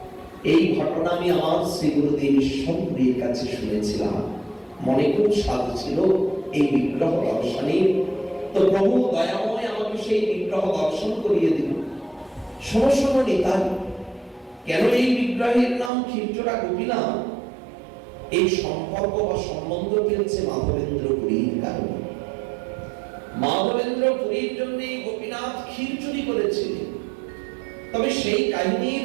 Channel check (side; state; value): left; drops out; at 15.9 s